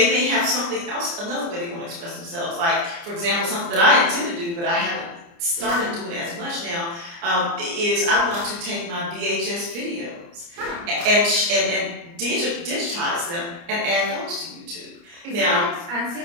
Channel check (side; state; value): left; late; 29 ms